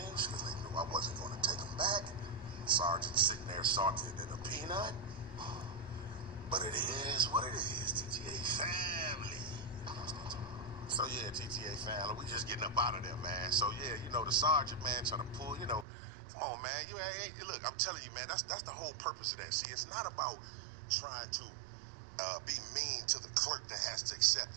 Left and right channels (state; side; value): drops out; left; at 15.9 s